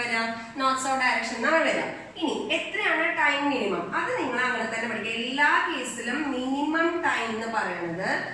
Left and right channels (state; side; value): identical; both; correlation 1.00